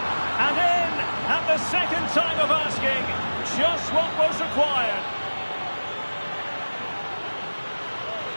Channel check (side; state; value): both; inverted; correlation -1.00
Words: And in! At the second time of asking, just what was required.